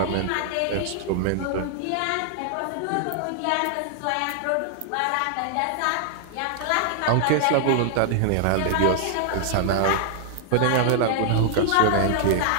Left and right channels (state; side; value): different; both; correlation 0.00